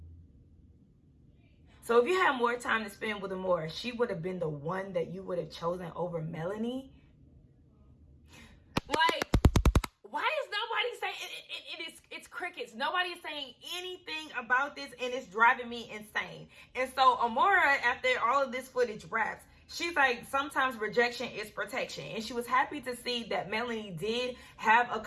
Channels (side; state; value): both; identical; correlation 1.00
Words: So if you had more time to spend with Amora, she would have been the one that you would have chosen over Melanie. Like, why is nobody saying it's crickets? comments. Nobody is saying anything about this, and it's driving me insane. And so Amara, after all of this footage wraps, she's like, sometimes rejection is protection. And she was happy to see that Melanie did have a